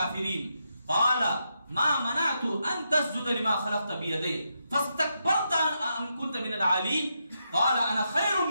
قال ما منعت ان تسجد لما خلقت بيدي فاستكبرت ام كنت من العالين قال انا خير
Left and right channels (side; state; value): both; inverted; correlation -0.83